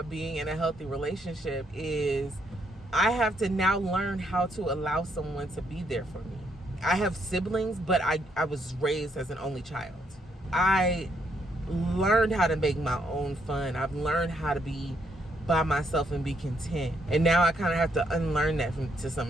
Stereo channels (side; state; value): both; normal; correlation 0.74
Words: being in a healthy relationship is I have to now learn how to allow someone to be there for me. I have siblings, but I was raised as an only child. I learned how to make my own fun. I've learned how to be by myself and be content. And now I kind of have to unlearn that to